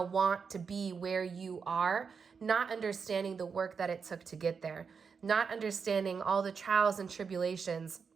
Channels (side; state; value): left; quieter; 5.8 dB